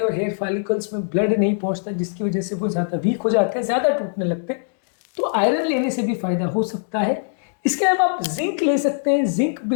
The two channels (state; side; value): silent; right; digital silence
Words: हैं और हेयर फॉलिकल्स में ब्लड नहीं पहुंचता, जिसकी वजह से वो ज़्यादा वीक हो जाते हैं, ज़्यादा टूटने लगते हैं। तो आयरन लेने से भी फायदा हो सकता है। इसके अलावा आप जिंक ले सकते हैं। जिंक